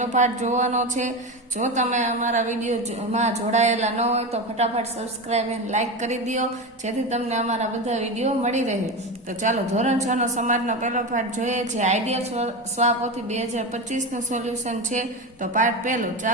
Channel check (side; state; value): both; normal; correlation 0.20